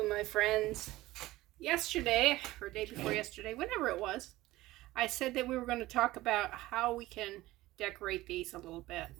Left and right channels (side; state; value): left; quieter; 17.6 dB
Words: friends. Yesterday, or day before yesterday, whenever it was, I said that we were going to talk about how we can decorate these a little bit.